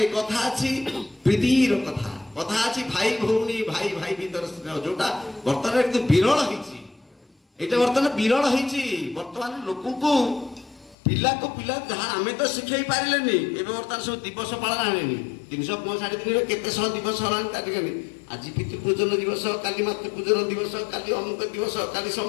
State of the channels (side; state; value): right; drops out; at 11.0 s